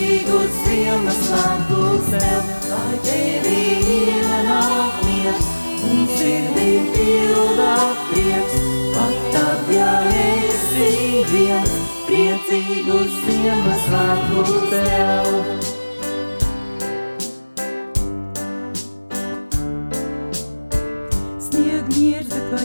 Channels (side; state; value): both; inverted; correlation -1.00